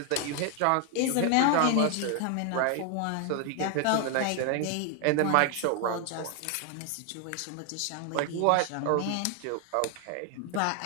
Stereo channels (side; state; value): both; different; correlation 0.00